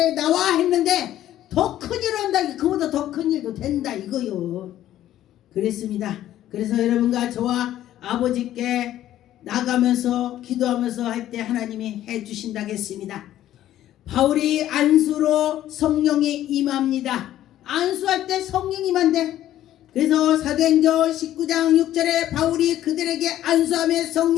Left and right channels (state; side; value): quieter; right; 12.7 dB